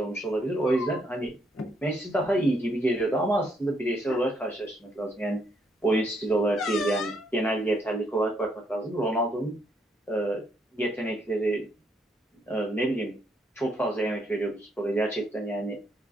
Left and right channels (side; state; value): both; normal; correlation 0.73